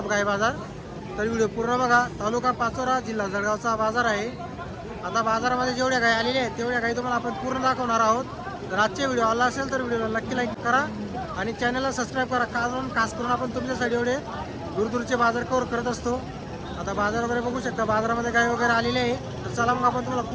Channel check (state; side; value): identical; both; correlation 1.00